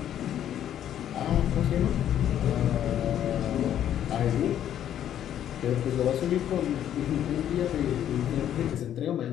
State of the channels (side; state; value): right; quieter; 10.6 dB